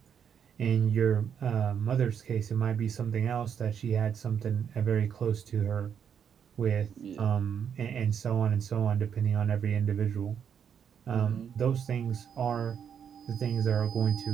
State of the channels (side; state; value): left; quieter; 7.9 dB